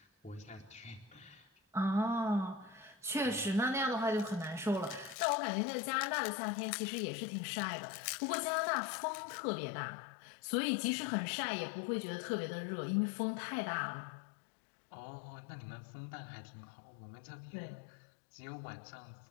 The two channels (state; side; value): drops out; right; at 5.2 s